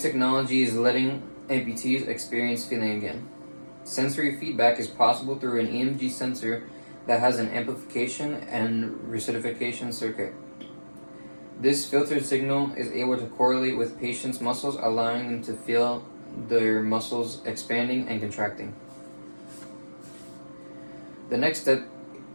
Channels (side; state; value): both; inverted; correlation -1.00